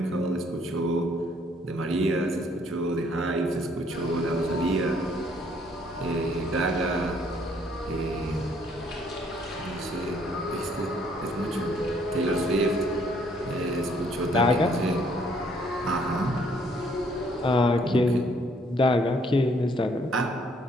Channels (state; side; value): normal; both; correlation 0.65